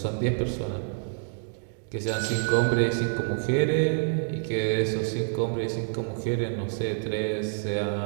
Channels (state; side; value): silent; left; digital silence